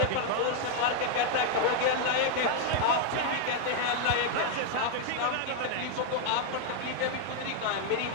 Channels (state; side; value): different; both; correlation 0.00